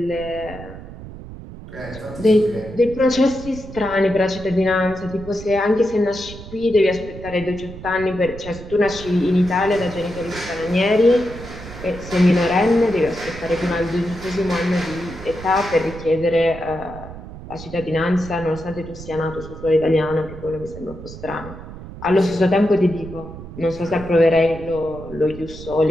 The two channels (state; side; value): noise; right; rumble, 13 dB below the sound